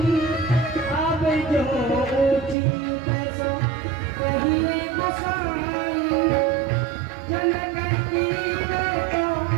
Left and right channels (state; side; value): drops out; left; at 2.6 s